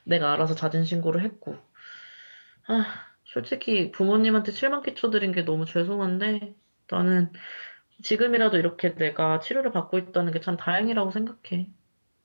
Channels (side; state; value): both; inverted; correlation -1.00